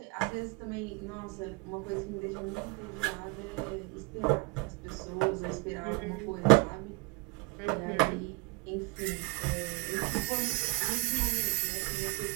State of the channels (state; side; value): quieter; left; 27.4 dB